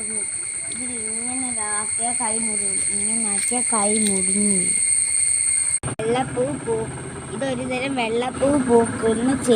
ഇതിൽ ഇങ്ങനെ ആക്കിയാൽ കൈ മുറിയും. ഇങ്ങനെ ആക്കിയാൽ കൈ മുറിഞ്ഞു. വെള്ളപ്പൂ ഇതൊരു തരം വെള്ളപ്പൂ പൂക്കുന്ന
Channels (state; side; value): identical; both; correlation 1.00